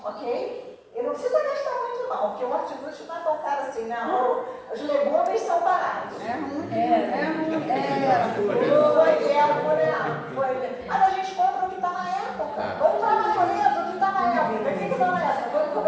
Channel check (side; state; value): both; identical; correlation 1.00